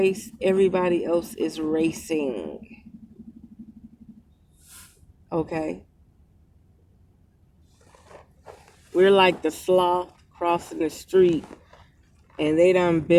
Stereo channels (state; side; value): identical; both; correlation 1.00